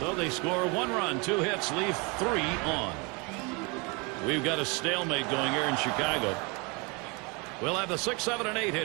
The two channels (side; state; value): left; quieter; 29.6 dB